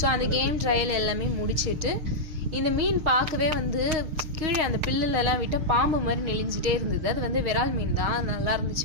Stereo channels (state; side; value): late; left; 6.5 ms